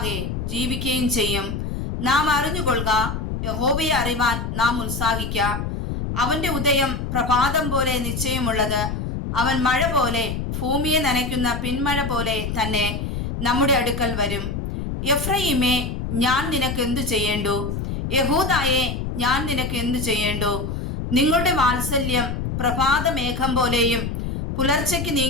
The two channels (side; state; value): left; noise; rumble, 4 dB below the sound